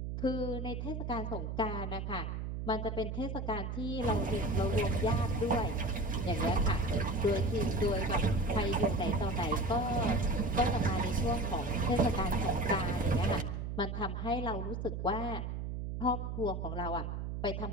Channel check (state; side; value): noise; right; hum, 4 dB below the sound